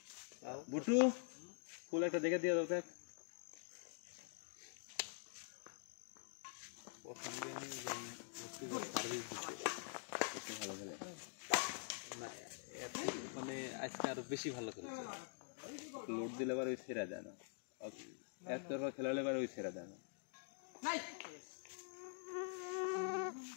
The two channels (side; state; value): right; silent; digital silence